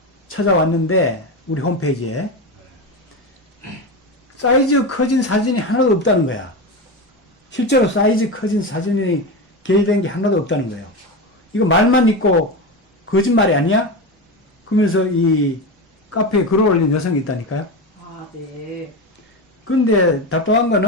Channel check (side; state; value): both; normal; correlation 0.19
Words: 찾아왔는데 우리 홈페이지에 사이즈 커진 사진이 하나도 없다는 거야. 실제로 사이즈 커진 사진이 게재된 게 하나도 없다는 거예요. 이거 말만 있고 거짓말이 아니야? 그러면서 이 카페에 글을 올린 여성이 있다니까요. 아, 네. 근데 답답한